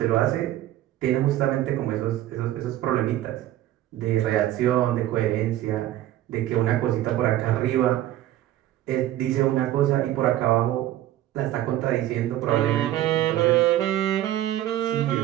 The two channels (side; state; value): left; quieter; 13.6 dB